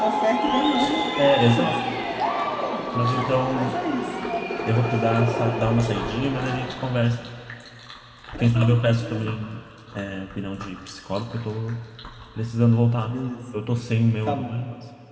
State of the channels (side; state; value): both; identical; correlation 1.00